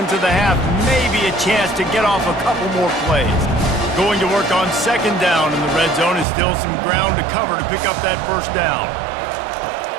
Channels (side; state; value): left; drops out; at 6.2 s